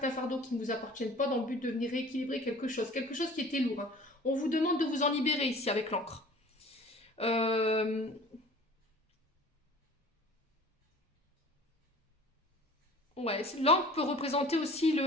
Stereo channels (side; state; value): both; normal; correlation 0.46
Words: fardeaux qui ne vous appartiennent pas dans le but de venir rééquilibrer quelque chose qui était lourd. Hein. On vous demande de vous en libérer ici avec l'encre. Ouais, l'encre peut représenter aussi